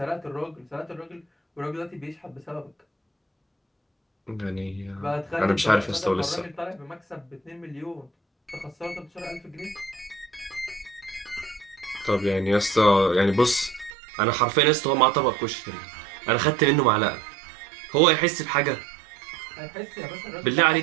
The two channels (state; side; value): drops out; left; at 13.9 s